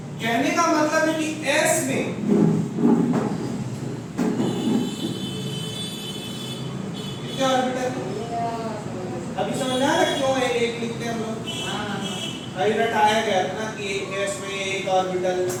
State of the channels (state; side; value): identical; both; correlation 1.00